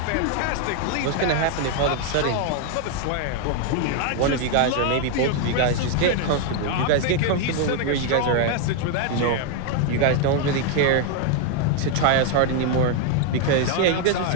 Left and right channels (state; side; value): different; both; correlation 0.01